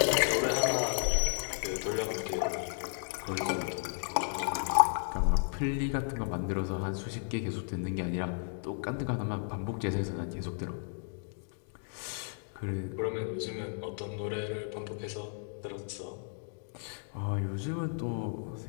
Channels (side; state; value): right; silent; digital silence